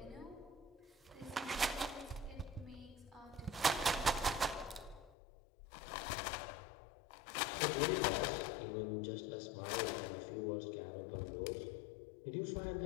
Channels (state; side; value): drops out; right; at 5.1 s